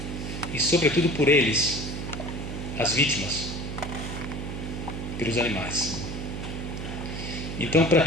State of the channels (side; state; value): right; noise; hum, 6 dB below the sound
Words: e sobretudo por eles, as vítimas, pelos animais. Então, para